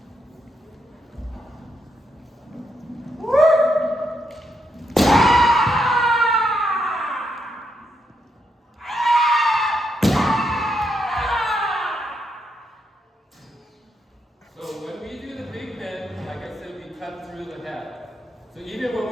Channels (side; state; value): both; normal; correlation 0.80